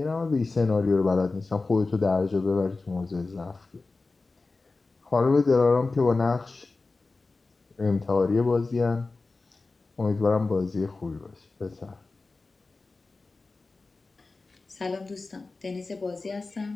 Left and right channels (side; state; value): right; quieter; 3.6 dB